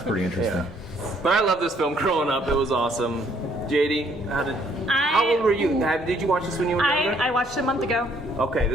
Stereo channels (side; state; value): both; normal; correlation 0.66